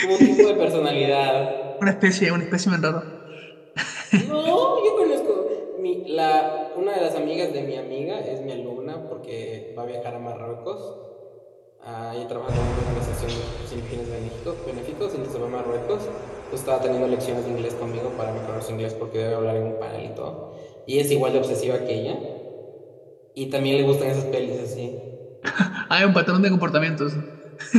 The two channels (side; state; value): both; identical; correlation 1.00